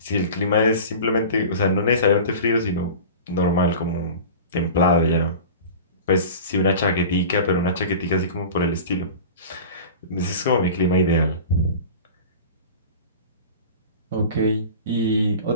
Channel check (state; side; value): inverted; both; correlation -0.36